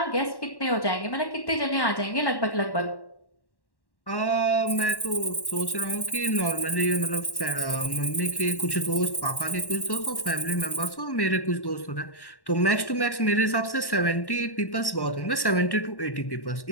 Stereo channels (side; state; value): right; late; 1.1 ms